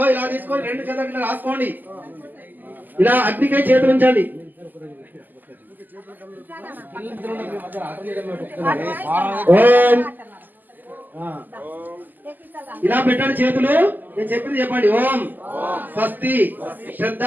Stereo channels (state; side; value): late; left; 0.086 ms